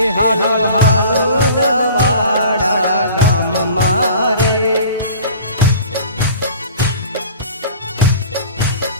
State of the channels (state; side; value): inverted; both; correlation -0.44